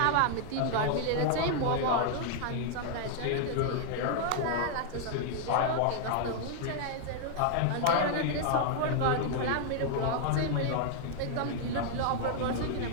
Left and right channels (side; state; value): both; different; correlation 0.00